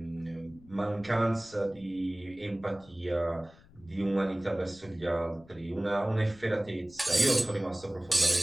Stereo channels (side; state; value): left; noise; rumble, 25 dB below the sound